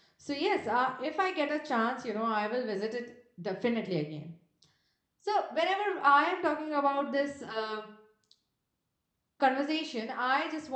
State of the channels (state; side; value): identical; both; correlation 1.00